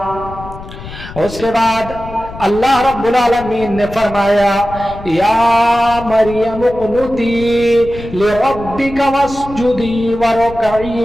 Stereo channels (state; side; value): noise; left; rumble, 14 dB below the sound